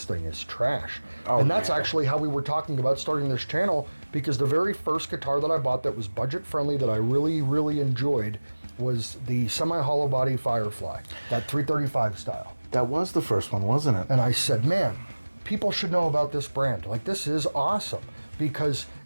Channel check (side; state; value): both; inverted; correlation -1.00